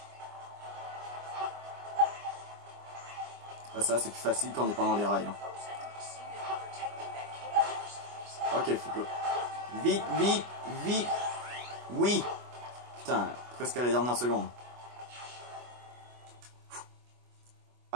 Ah, ça, c'est plus facile quand on est pendant les rails. Hein. Ok, faut que... Vite, vite, vite. Oui. Putain, presque à la dernière seconde.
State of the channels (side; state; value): left; late; 25 ms